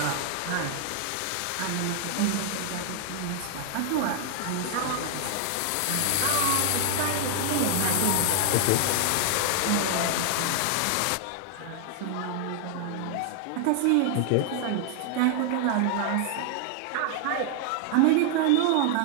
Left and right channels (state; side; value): different; both; correlation 0.00